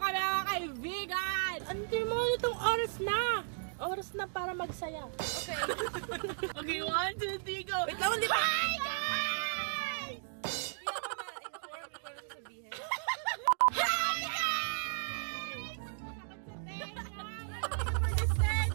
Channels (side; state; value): left; silent; digital silence